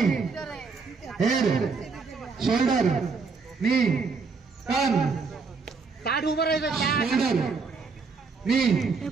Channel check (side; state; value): left; quieter; 4.7 dB